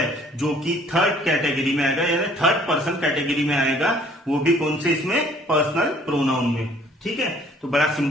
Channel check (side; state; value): both; normal; correlation 0.57